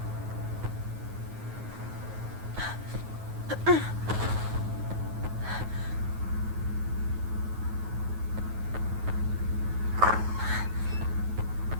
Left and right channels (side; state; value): left; late; 9.3 ms